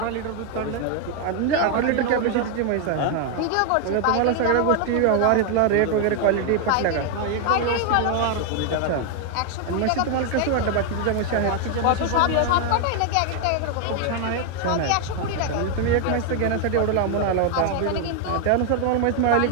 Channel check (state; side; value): different; both; correlation 0.00